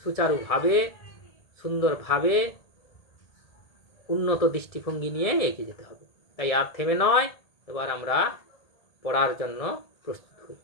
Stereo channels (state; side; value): late; right; 1.7 ms